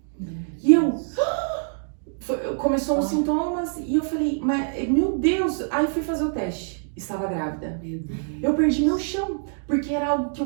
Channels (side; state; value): left; silent; digital silence